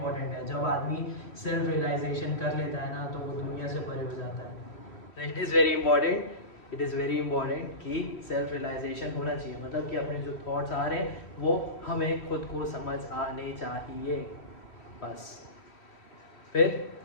है, जब आदमी सेल्फ रियलाइजेशन कर लेता है ना तो वो दुनिया से परे हो जाता है। It is very important, it is very important कि सेल्फ रियलाइजेशन होना चाहिए, मतलब कि अपने जो थॉट्स आ रहे हैं वो हमें खुद को समझ आने चाहिए बस। फिर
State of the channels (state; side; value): late; right; 3.1 ms